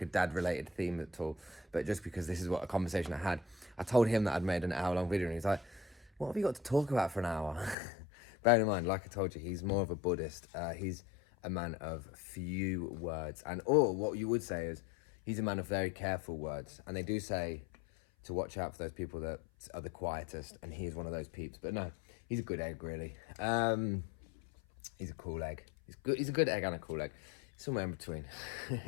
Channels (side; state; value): right; drops out; at 7.8 s